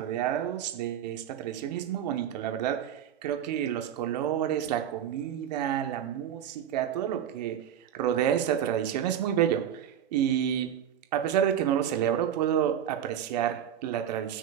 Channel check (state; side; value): quieter; left; 9.7 dB